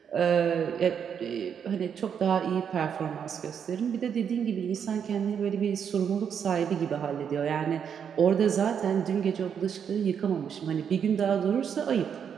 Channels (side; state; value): left; quieter; 7.7 dB